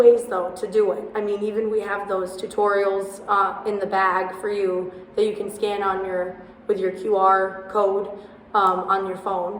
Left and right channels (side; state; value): both; identical; correlation 1.00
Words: though to do it. I mean, even we have those tutorials in the bag for you that you can scan on with your QR code on your phone.